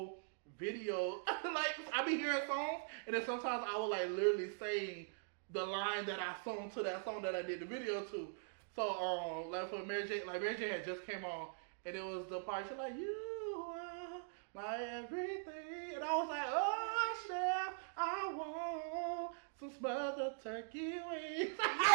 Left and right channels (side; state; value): left; silent; digital silence